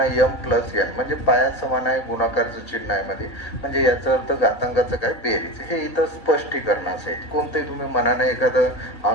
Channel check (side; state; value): right; late; 1.8 ms